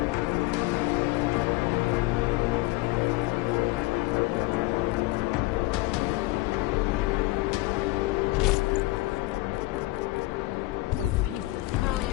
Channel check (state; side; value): quieter; right; 20.2 dB